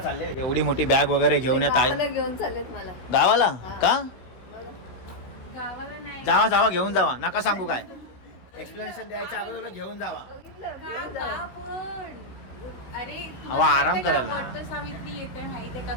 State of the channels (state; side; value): late; right; 16 ms